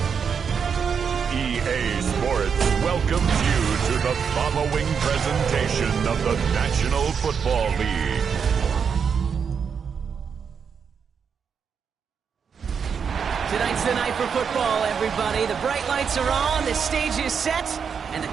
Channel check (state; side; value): quieter; left; 6.6 dB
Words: EA Sports welcomes you to the following presentation of the National Football League. Tonight's the night for football, everybody. The bright lights are on, the stage is set, and the